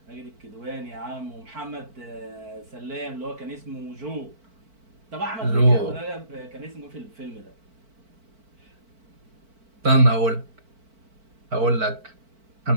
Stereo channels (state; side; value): late; left; 4.5 ms